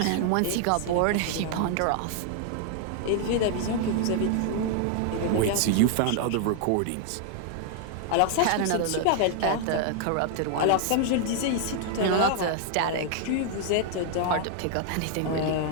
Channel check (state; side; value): different; both; correlation 0.00